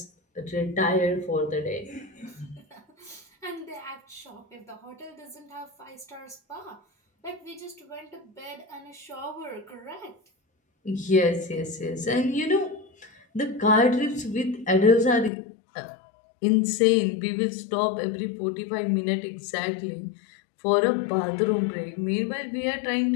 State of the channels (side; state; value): right; drops out; at 15.3 s